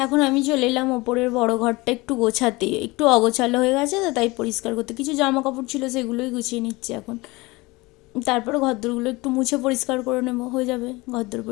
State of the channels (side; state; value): right; quieter; 22.7 dB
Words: এখন আমি চলে এলাম ওপরের বড় ঘরটা একটু গোছাতে, একটু অগোছালো হয়ে গেছে তো, তাই পরিষ্কার করতে। কিছু জামা কাপড় ছিল, সেগুলোই গুছিয়ে নিচ্ছি এখন। তারপরে ঘরদোরগুলো একটু মুছে পরিষ্কার করে নেবো, হয়ে যাবে ঘরদোর